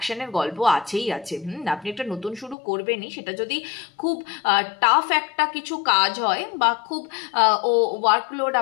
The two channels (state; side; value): drops out; right; at 2.6 s